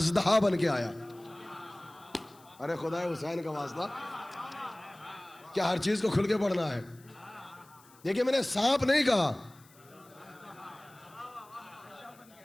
बन के आया। अरे खुदा हुसैन का वास्ता, क्या हर चीज को खुल के पढ़ना है? देखिए, मैंने सांप नहीं कहा,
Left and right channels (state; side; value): noise; left; hiss, 27 dB below the sound